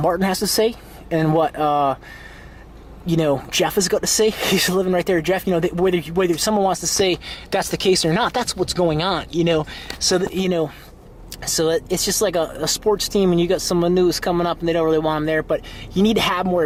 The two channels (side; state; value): both; identical; correlation 1.00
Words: has to say, and what you know, Jeff has got to say. He's living right there, Jeff. You know, whether someone wants to say that's the case or not, that's what's going on. You know, so that, you know. So it's just like a sports team, and you got someone new who's coming up, and they don't really want them there. But you need to have more